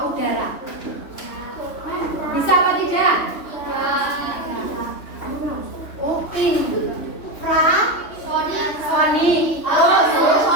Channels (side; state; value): right; late; 3.1 ms